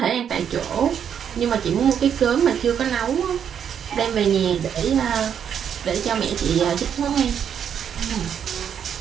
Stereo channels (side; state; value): left; quieter; 8.3 dB